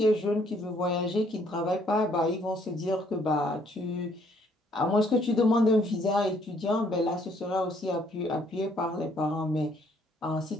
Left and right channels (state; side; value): normal; both; correlation 0.66